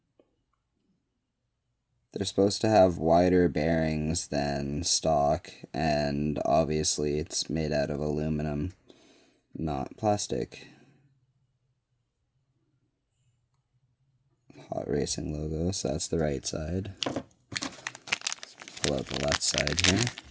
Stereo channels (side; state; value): both; identical; correlation 1.00